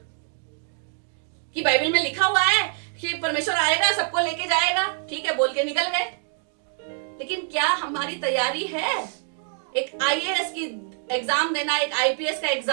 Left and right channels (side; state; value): left; silent; 58 dB below the other